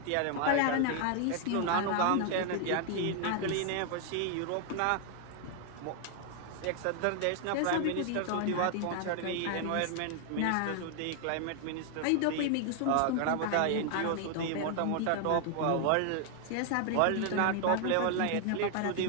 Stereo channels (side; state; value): both; different; correlation 0.00